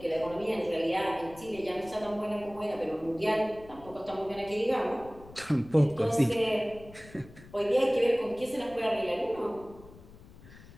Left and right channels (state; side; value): noise; left; rumble, 20 dB below the sound